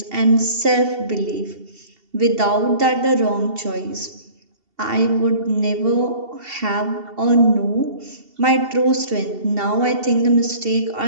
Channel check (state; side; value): late; left; 2.7 ms